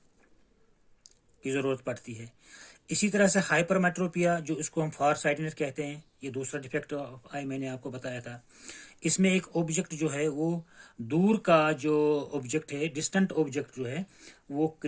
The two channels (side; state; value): both; identical; correlation 1.00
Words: की जरूरत पड़ती है। इसी तरह से हाइपरमेट्रोपिया, जो इसको हम फार साइटेडनेस कहते हैं, ये दूसरा डिफेक्ट ऑफ आई मैंने आपको बताया था। इसमें एक ऑब्जेक्ट जो है वो दूर का जो ऑब्जेक्ट है, डिस्टेंट ऑब्जेक्ट जो है वो